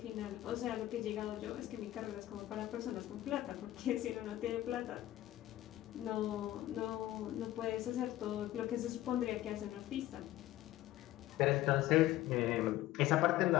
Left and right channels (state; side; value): quieter; right; 14.8 dB